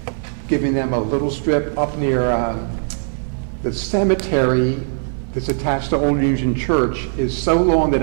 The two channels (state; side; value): silent; left; digital silence